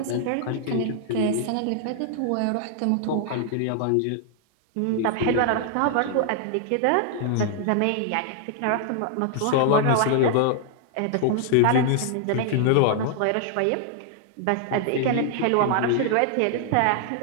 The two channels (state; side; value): different; both; correlation 0.00